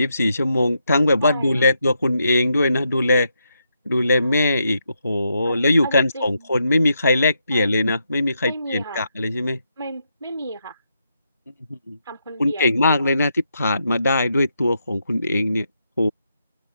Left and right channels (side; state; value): both; inverted; correlation -0.81